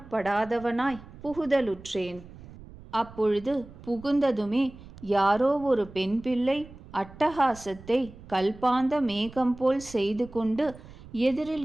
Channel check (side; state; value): right; noise; rumble, 18 dB below the sound